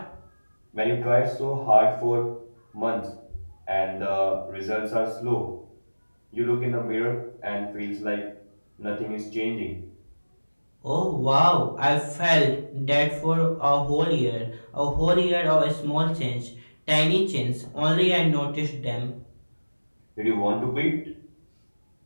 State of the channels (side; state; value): both; inverted; correlation -1.00